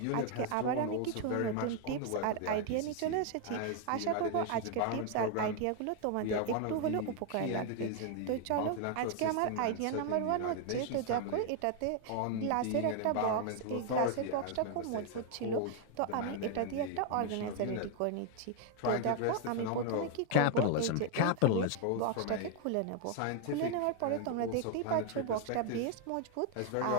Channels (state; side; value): different; both; correlation 0.00